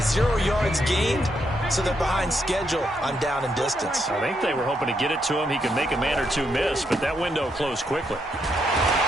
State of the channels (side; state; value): both; normal; correlation 0.78